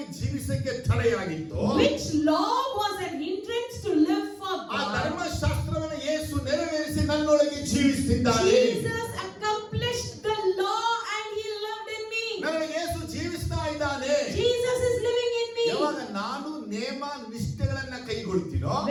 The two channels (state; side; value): identical; both; correlation 1.00